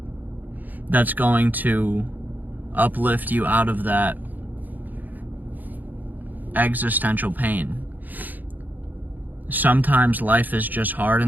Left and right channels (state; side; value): late; left; 0.084 ms